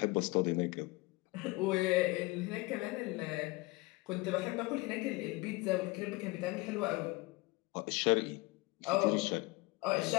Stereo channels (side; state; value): right; quieter; 23.3 dB